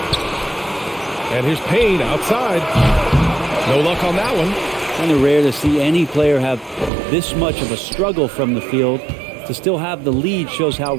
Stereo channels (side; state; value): left; drops out; at 6.9 s